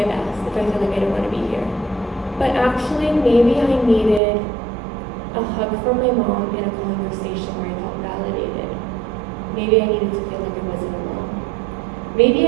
best, if I feel like I don't want to be here. But actually, maybe I needed a hug from my mom in a conversation where I felt validated. Maybe I needed to feel like I wasn't alone. Maybe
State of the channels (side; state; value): left; drops out; at 4.2 s